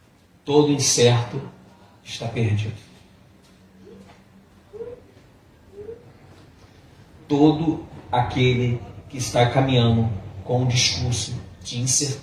Todo incerto está perdido. Todo aquele que está caminhando com um discurso de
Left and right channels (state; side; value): identical; both; correlation 1.00